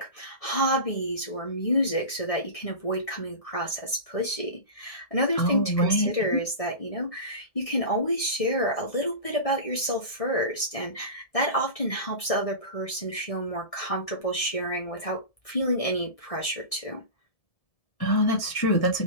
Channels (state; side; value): late; right; 1.6 ms